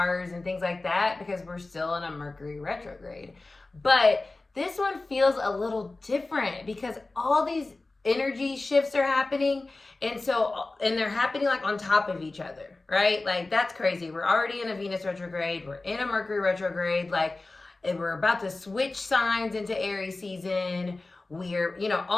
and things like that because we're still in a Mercury retrograde. But this one feels a little different because all these energy shifts are happening and they're happening like on top of each other, right? Like that's crazy. We're already in a Venus retrograde. We're in a Mercury retrograde. Like we're about to switch signs into Aries season.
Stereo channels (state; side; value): quieter; right; 3.2 dB